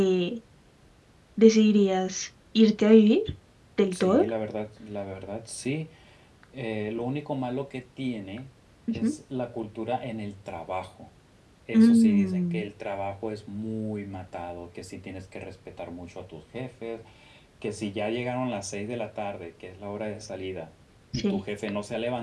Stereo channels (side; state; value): both; identical; correlation 1.00